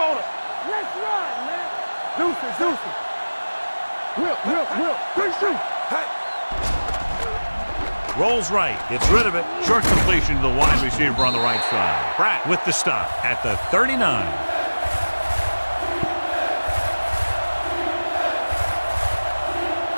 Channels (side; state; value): both; inverted; correlation -1.00